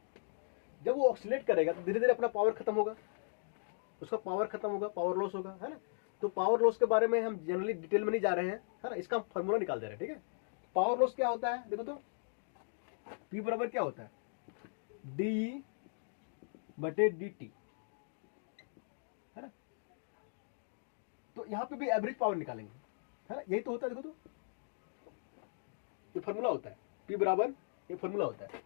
जब वो ऑक्सीलेट करेगा तो धीरे धीरे अपना पावर खत्म होगा, उसका पावर खत्म होगा, पावर लॉस होगा, है ना। तो पावर लॉस के बारे में हम जनरली डिटेल में नहीं जा रहे हैं, है ना, इसका हम फॉर्मूला निकाल दे रहे हैं, ठीक है। पावर लॉस क्या होता है, देखो तो P बराबर क्या होता है, DE/dt, है ना। तो यहां पे भी एवरेज पावर निकालेंगे, है ना, यही तो होता है। देखो तो ये फॉर्मूला होता है, P बराबर ये फॉर्मूला होता है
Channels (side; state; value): right; silent; digital silence